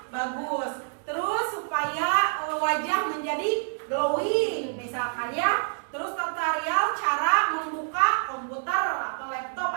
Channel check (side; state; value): left; silent; digital silence